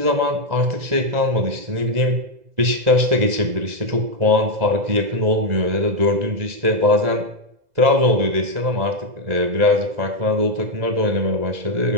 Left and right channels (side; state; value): left; late; 2.0 ms